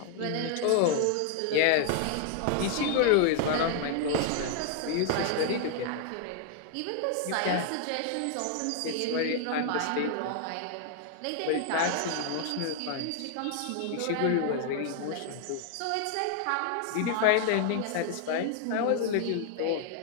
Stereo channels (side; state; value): both; different; correlation 0.00